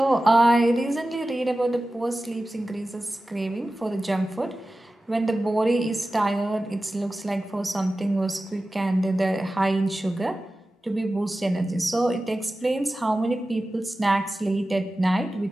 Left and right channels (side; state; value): both; normal; correlation 0.95